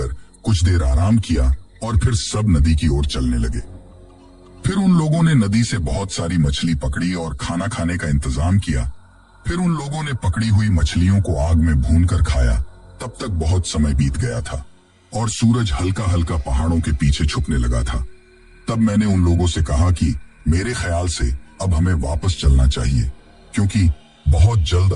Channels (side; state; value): both; identical; correlation 1.00